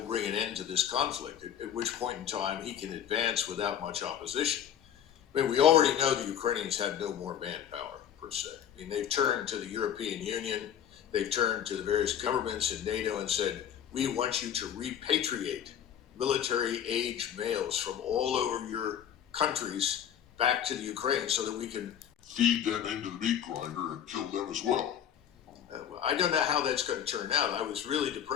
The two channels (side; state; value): right; quieter; 9.5 dB